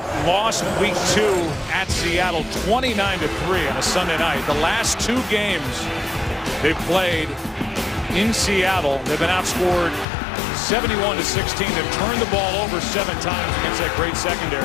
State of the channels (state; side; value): drops out; right; at 10.1 s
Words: lost week 2 at Seattle 29-3 on a Sunday night. The last 2 games they've played in Seattle, they've been outscored 71-16. They've turned the ball over 7 times against that great